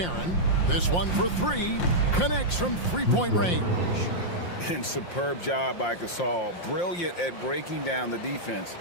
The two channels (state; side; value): late; right; 5.7 ms